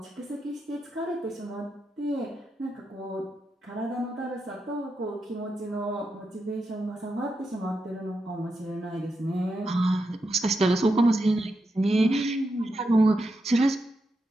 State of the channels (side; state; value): both; normal; correlation 0.86